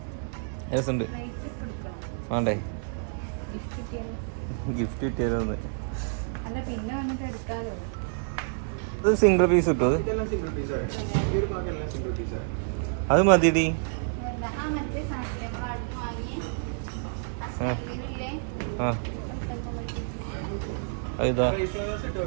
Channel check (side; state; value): left; silent; digital silence